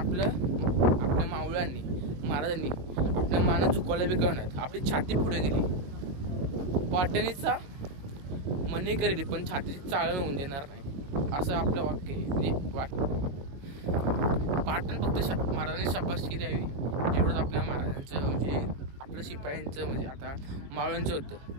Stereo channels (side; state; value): left; late; 21 ms